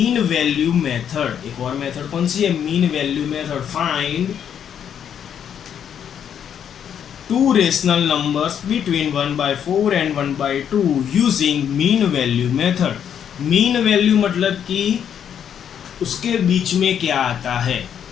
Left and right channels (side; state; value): right; quieter; 8.7 dB